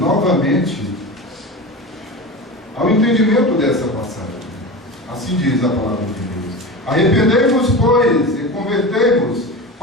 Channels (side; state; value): both; normal; correlation 0.28